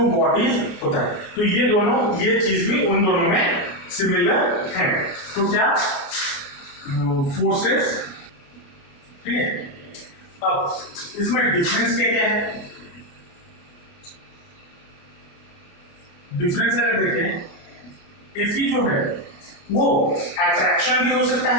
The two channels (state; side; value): late; right; 29 ms